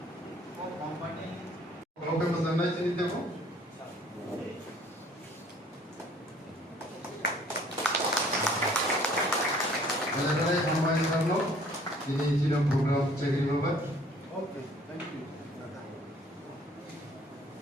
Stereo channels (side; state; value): both; normal; correlation 0.56